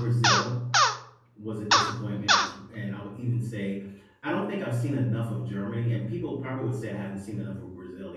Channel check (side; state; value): both; identical; correlation 1.00